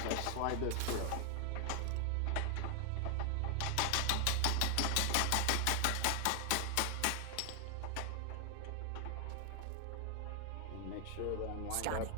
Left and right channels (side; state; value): both; different; correlation 0.00